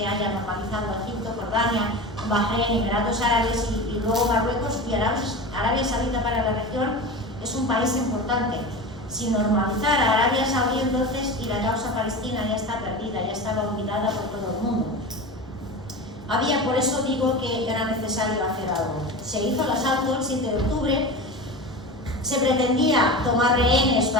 haya normalizado Egipto, Jordania, Bahrein, Emiratos Árabes y luego Marruecos, y Arabia Saudita para la región es un país importante. Sin normalizar a Arabia Saudí entonces, y la causa palestina ya está perdida, ya estaba olvidada por todo el mundo. Por eso digo que era necesario hacer algo. Se hizo el asalto el 7 de octubre, se pretendía tomar rehenes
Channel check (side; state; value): both; normal; correlation 0.28